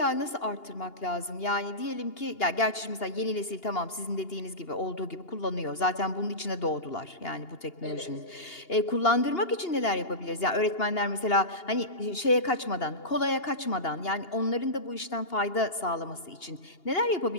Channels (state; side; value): late; right; 2.8 ms